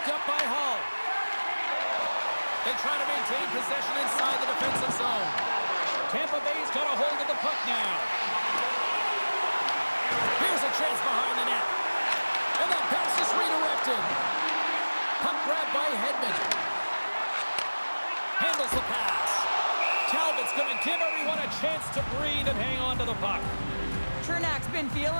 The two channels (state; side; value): inverted; both; correlation -1.00